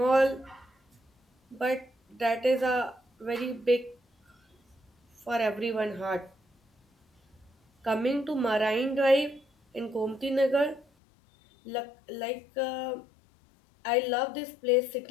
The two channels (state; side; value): drops out; right; at 10.9 s